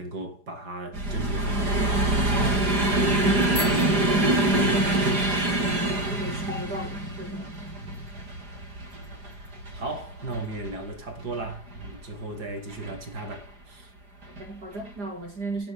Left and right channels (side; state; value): left; late; 4.9 ms